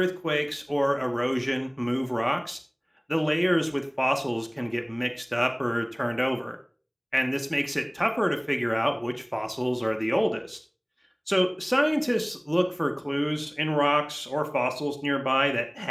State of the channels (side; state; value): both; identical; correlation 1.00